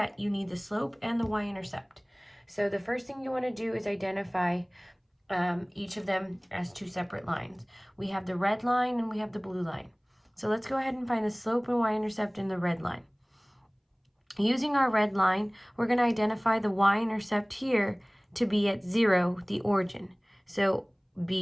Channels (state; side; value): identical; both; correlation 1.00